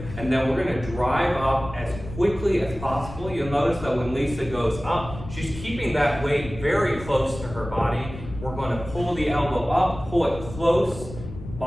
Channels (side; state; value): left; noise; rumble, 12 dB below the sound